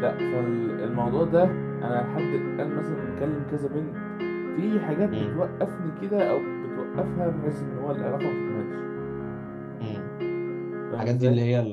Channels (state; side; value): identical; both; correlation 1.00